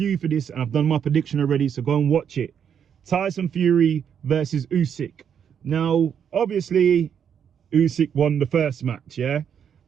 for this and I've done my prediction already, so go and watch it. Tyson Fury versus Usyk. Now, obviously, Usyk won the first match, yeah?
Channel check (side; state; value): left; quieter; 8.1 dB